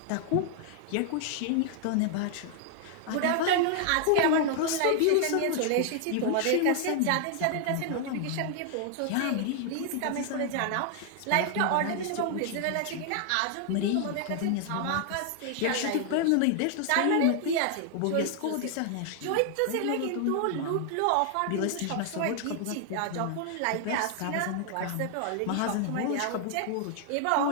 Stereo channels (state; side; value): different; both; correlation 0.00